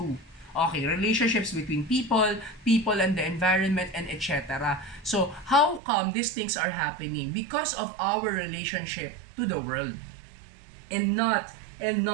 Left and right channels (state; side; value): drops out; left; at 5.8 s